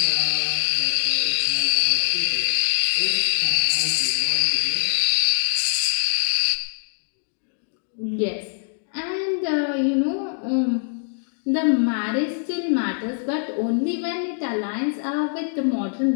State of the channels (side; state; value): right; silent; digital silence